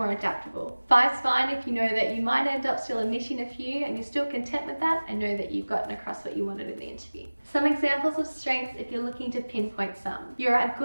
adaptable. 5's fine if you know that you might end up still omitting a few and you're still content with that and know that you've gotten across what you wanted in the interview. Some examples of strengths if you're looking to pinpoint some. You're a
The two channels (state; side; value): inverted; both; correlation -1.00